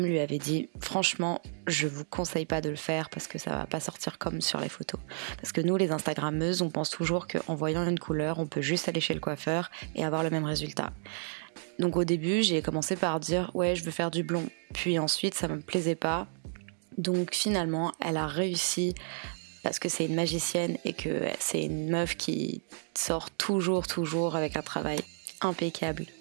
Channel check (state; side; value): silent; left; digital silence